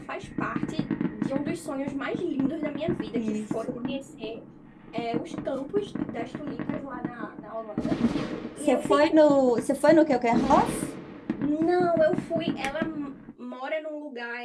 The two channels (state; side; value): identical; both; correlation 1.00